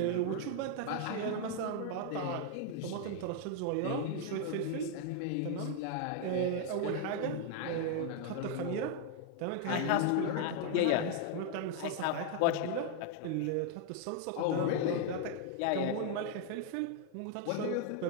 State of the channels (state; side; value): different; both; correlation 0.00